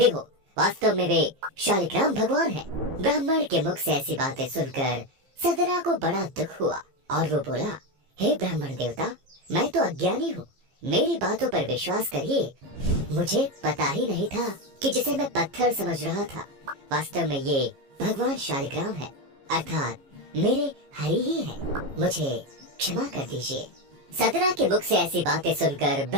हो वास्तव में वे शालिग्राम भगवान है? ब्राह्मण के मुख से ऐसी बातें सुनकर सदना को बड़ा दुख हुआ और वो बोला, हे ब्राह्मण देवता, मैं तो अज्ञानी हूँ, मेरी बातों पर विश्वास करिए। मुझे पता ही नहीं था कि जिसे मैं पत्थर समझ रहा था वास्तव में ये भगवान शालिग्राम है, अर्थात मेरे हरि ही है। मुझे क्षमा कर दीजिए। सदना के मुख से ऐसी बातें सुनकर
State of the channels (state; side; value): late; left; 15 ms